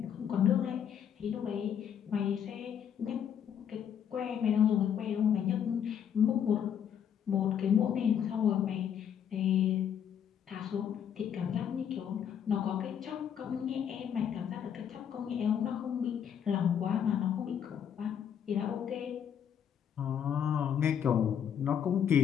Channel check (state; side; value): quieter; right; 8.6 dB